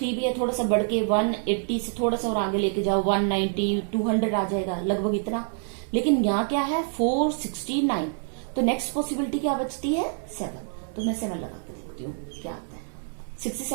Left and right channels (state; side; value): silent; left; 61 dB below the other